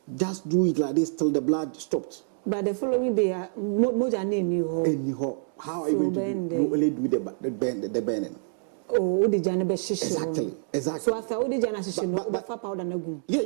Just do it like this till the blood stops. But the following day, how are you going to do? You only do the burning. Oh, exactly. So after all the powder,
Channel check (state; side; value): silent; left; digital silence